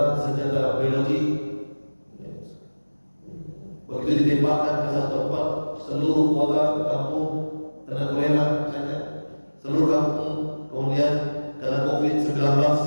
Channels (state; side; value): inverted; both; correlation -1.00